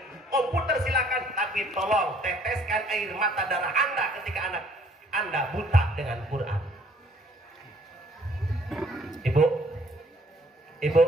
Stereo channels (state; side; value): normal; both; correlation 0.60